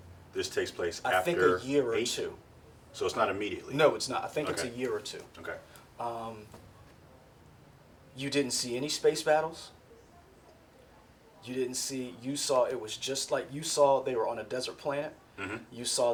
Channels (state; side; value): identical; both; correlation 1.00